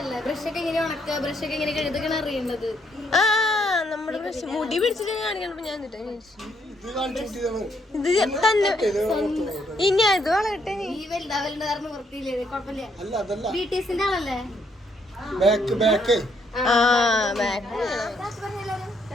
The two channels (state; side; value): normal; both; correlation 0.72